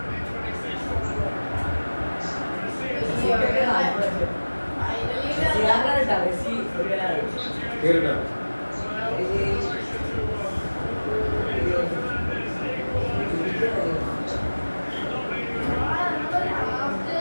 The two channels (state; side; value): inverted; both; correlation -1.00